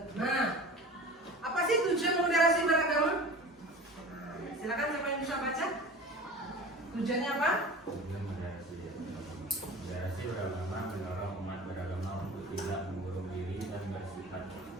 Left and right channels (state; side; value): normal; both; correlation 0.37